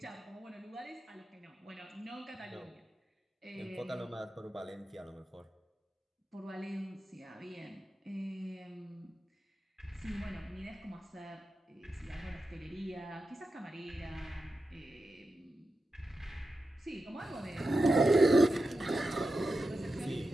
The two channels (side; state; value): both; normal; correlation 0.91